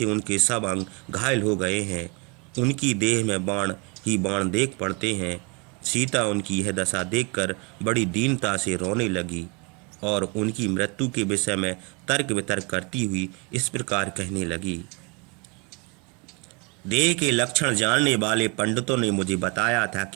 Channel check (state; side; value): quieter; left; 31.0 dB